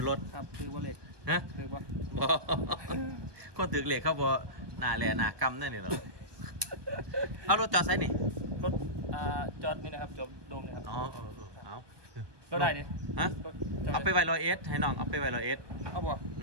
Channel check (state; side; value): late; left; 1.2 ms